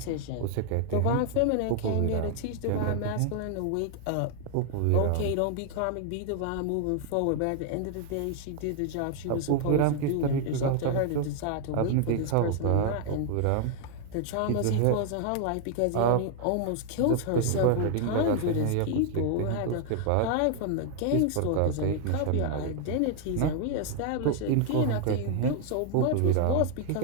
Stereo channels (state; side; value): different; both; correlation 0.00